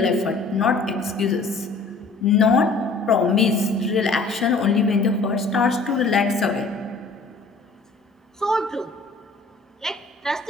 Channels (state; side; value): quieter; right; 3.8 dB